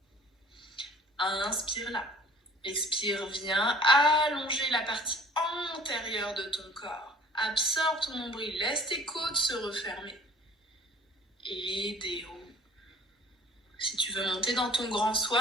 Inspire là. Expire, viens allonger la partie antérieure de ton corps. Absorbe ton nombril, laisse tes côtes se refermer. Et déroule. Si tu veux monter dans ton grand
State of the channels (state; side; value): normal; both; correlation 0.49